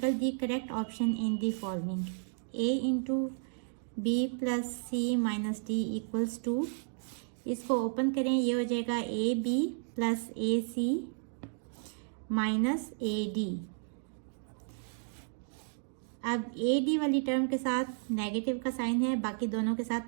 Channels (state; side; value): silent; left; digital silence